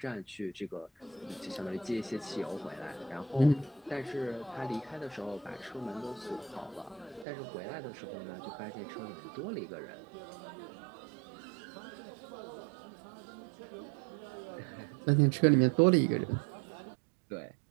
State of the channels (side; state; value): left; drops out; at 7.2 s